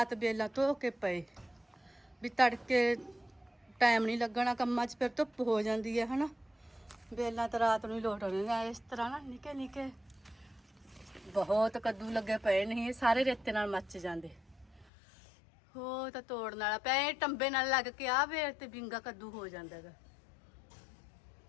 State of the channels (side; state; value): right; drops out; at 14.9 s